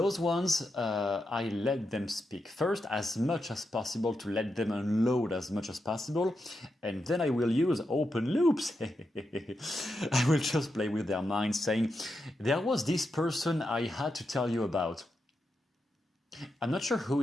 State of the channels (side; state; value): both; normal; correlation 0.86